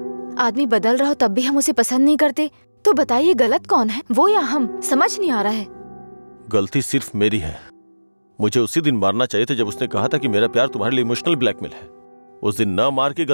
आदमी बदल रहा हो तब भी हम उसे पसंद नहीं करते, तो बताइए गलत कौन है, वो या हम? समझ नहीं आ रहा है। गलती सिर्फ मेरी है। मुझे उसी दिन मारना चाहिए था जब उसने कहा था कि मेरा प्यार तुम्हारे लिए इमोशनल ब्लैकमेल है। उस दिन न मार के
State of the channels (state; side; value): inverted; both; correlation -1.00